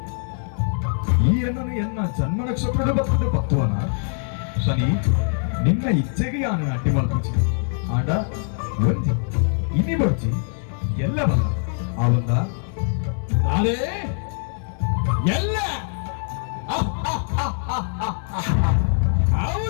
ಈ ಎನ್ನನು ಎನ್ನ ಜನ್ಮ ನಕ್ಷತ್ರದ ಬರ್ತದೆ ಪತ್ವನ ಶನಿ ನಿನ್ನ ಇಚ್ಛೆಗೆ ಯಾನು ಅಡ್ಡಿ ಮಲ್ಪುಚಿ ಆಂಡ ಒಂಜಿ ಇನಿ ಬರ್ಚಿ ಎಲ್ಲ ಬಲ್ಲ ಆವಂದ ನಾನೇ ಎಲ್ಲ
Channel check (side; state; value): right; silent; digital silence